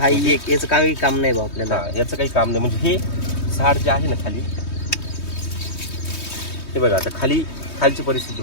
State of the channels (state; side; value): late; right; 3.2 ms